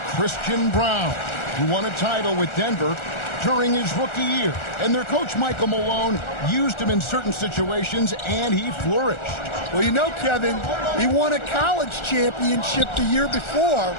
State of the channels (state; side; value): late; right; 1.4 ms